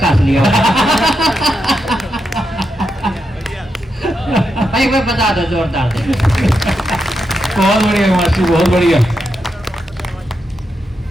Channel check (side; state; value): both; normal; correlation 0.85